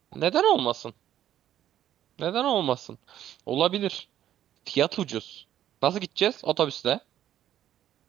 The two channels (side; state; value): left; quieter; 11.5 dB